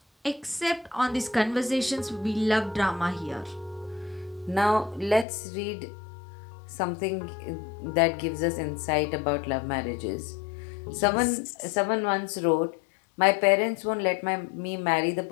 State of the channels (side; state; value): right; drops out; at 5.2 s